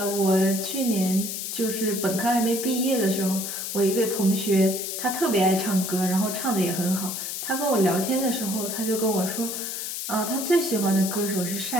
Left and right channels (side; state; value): left; noise; hiss, 5 dB below the sound